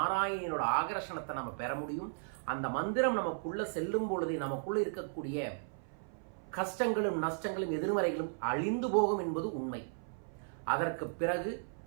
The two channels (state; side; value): silent; left; 54 dB below the other